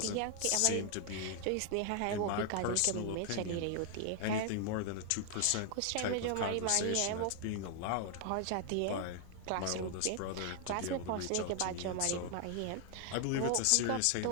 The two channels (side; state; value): both; different; correlation 0.00